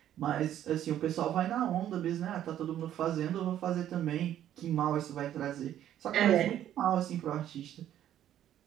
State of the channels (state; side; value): quieter; left; 11.4 dB